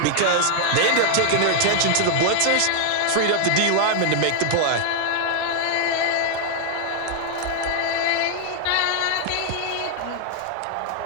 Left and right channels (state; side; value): different; both; correlation 0.00